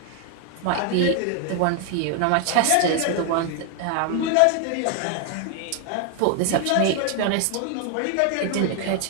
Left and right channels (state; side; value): different; both; correlation 0.00